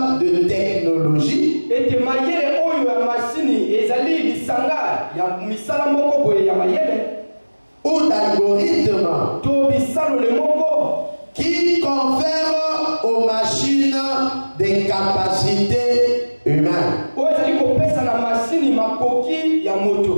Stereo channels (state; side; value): inverted; both; correlation -1.00